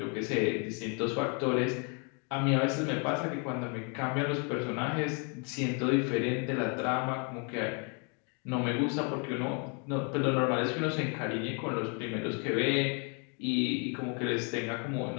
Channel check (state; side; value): quieter; right; 36.3 dB